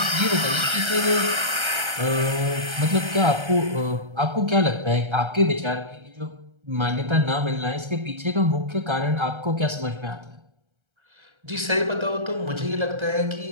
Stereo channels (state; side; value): late; left; 1.3 ms